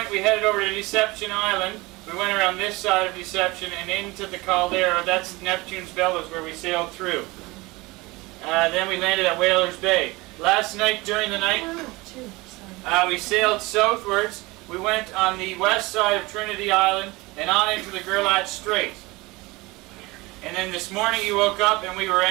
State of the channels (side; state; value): left; quieter; 22.6 dB